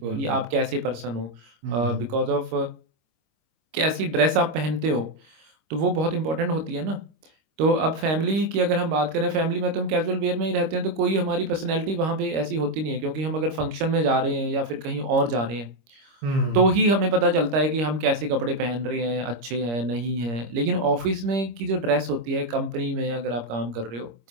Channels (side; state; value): left; late; 26 ms